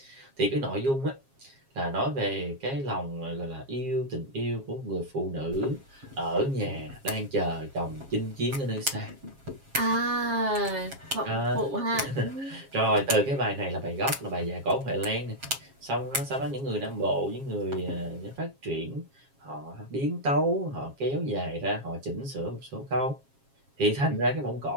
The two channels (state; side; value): late; left; 7.4 ms